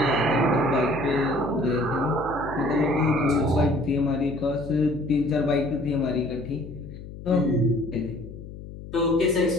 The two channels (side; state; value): left; noise; hum, 13 dB below the sound